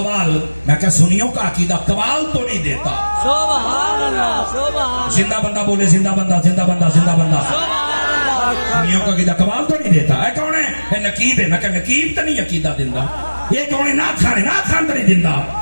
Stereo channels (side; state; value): both; inverted; correlation -1.00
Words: میں کہا سنیوں کا عقیدہ قوال تو نہیں دیتا. سبحان اللہ سبحان زندہ بندہ بولے زندہ بندہ زندہ بندہ زندہ بندہ. سنیوں کا عقیدہ قوال تو نہیں دیتا. اے کون ہے؟ نقیب ہے. میں کہا نقیب تو نہیں عقیدہ دیندہ. یہ کون ہے؟ نعت خان ہے. نعت خان تو نہیں دیندہ.